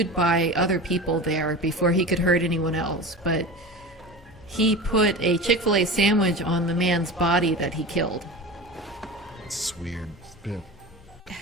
by other people there before he could hurt anyone else, but he put a Chick-fil-A sandwich on the man's body that he killed. It's weird. Yeah.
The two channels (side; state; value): both; normal; correlation 0.31